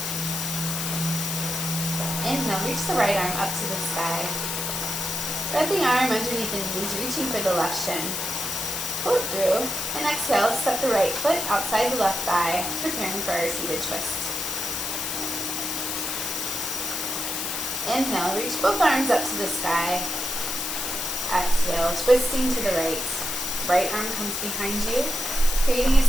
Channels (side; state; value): left; noise; hiss, 2 dB below the sound